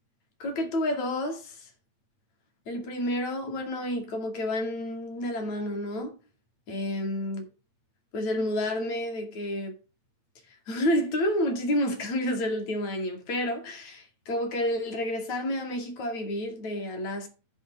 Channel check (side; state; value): right; late; 8.8 ms